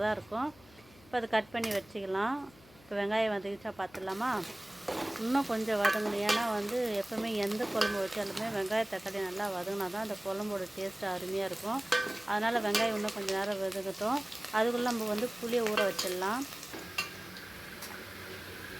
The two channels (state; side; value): noise; left; hum, 25 dB below the sound